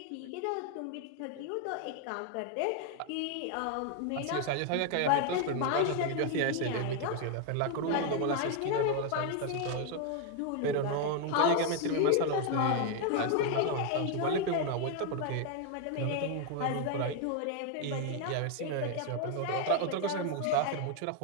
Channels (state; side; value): different; both; correlation 0.01